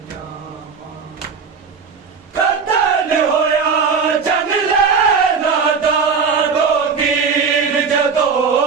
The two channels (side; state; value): left; quieter; 5.6 dB